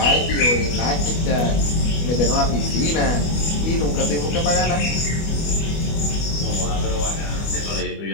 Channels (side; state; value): right; late; 25 ms